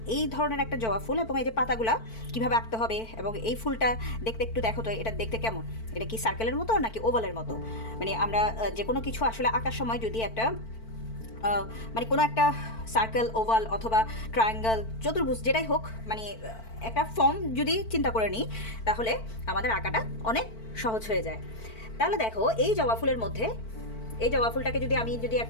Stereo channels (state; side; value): late; right; 4.5 ms